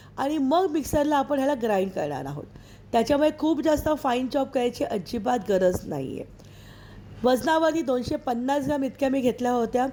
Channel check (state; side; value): identical; both; correlation 1.00